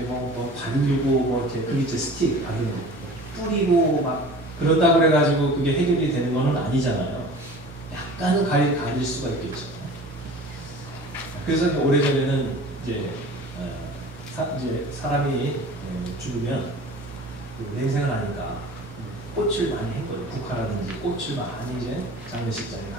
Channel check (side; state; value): right; noise; hum, 18 dB below the sound